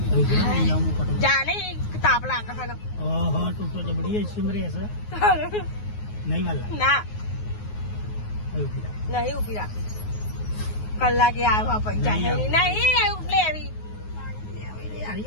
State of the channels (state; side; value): late; right; 9.5 ms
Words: જાને તાપ લાગે છે. ઓહો તું તો જબડી સિમરે છે નહીં વાલા ના નહીં ઉભી રાખી કલાકે આવ્યા પૈસા નહીં લેવી